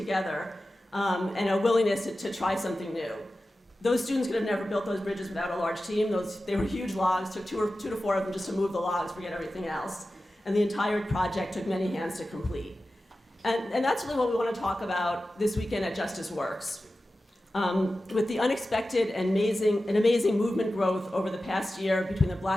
and a willingness to try something new. Those students could have never built those bridges without a large team. They were huge logs, took two to four of them just to move the logs, forget everything else. And the entire project took many hands to complete. And that's really what we want to talk about this weekend at Justice Works. With the unexpected and amazing movement growth over the past year between the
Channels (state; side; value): normal; both; correlation 0.94